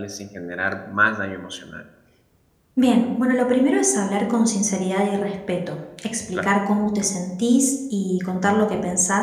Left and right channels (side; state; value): both; identical; correlation 1.00